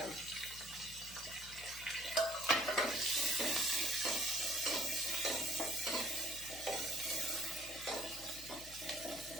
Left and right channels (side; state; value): left; noise; hum, 17 dB below the sound